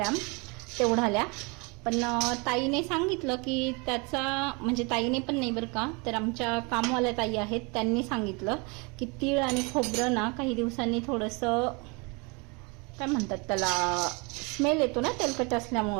तेवढाल्या. पण ताईने सांगितलं की त्याचा, म्हणजे ताईने पण नाही बरं का, तर आमच्या कामवाल्या ताई आहेत, त्यांनी सांगितलं की तीळ आणि खोबरं ना काही दिवसांनी थोडंसं काय म्हणतात त्याला, स्मेल येतो ना तेलकट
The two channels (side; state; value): left; quieter; 29.9 dB